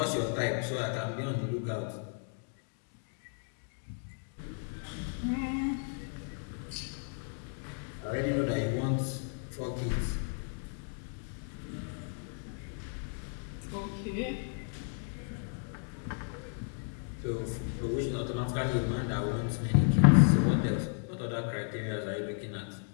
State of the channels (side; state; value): right; silent; 55 dB below the other